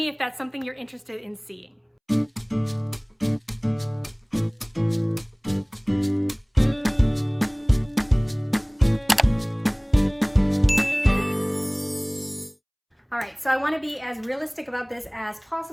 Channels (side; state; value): both; identical; correlation 1.00